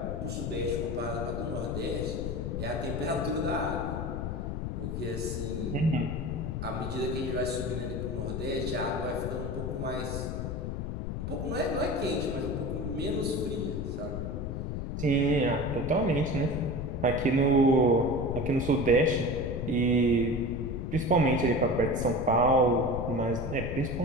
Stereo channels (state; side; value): noise; left; rumble, 4 dB below the sound